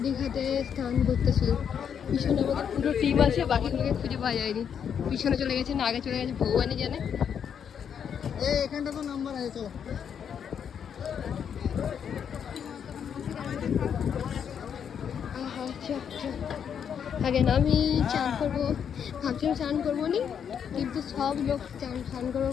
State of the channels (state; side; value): quieter; right; 7.9 dB